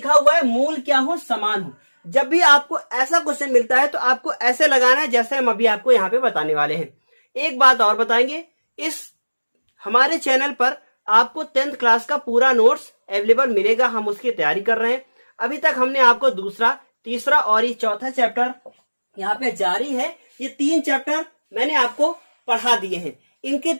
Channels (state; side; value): inverted; both; correlation -1.00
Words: हुआ है मूल क्या हो, समान हो। जब भी आपको ऐसा क्वेश्चन मिलता है तो आपको ऐसे लगाना है जैसे हम अभी आपको यहाँ पे बताने वाले हैं। एक बात और बताएंगे, इस हमारे चैनल पर आपको 10th क्लास का पूरा नोट्स अवेलेबल मिलेगा। हम उसकी तैयारी कर रहे हैं। अभी तक हमने आपको दूसरा, तीसरा और ये चौथा चैप्टर यहाँ पे जारी है। ये 3 चैप्टर मैंने आपको पढ़ा दिए हैं, इनकी